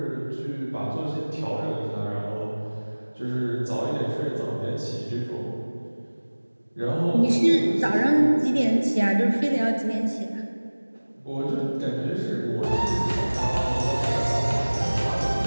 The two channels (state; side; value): inverted; both; correlation -1.00